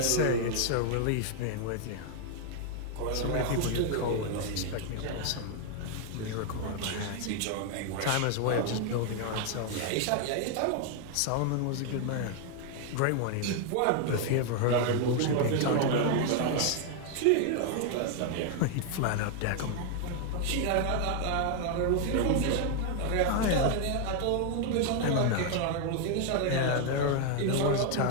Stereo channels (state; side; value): different; both; correlation 0.00